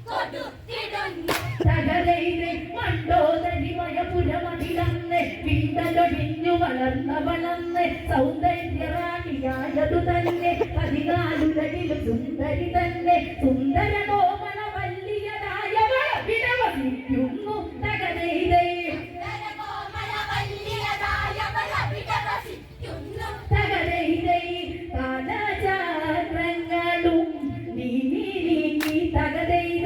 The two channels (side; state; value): both; identical; correlation 1.00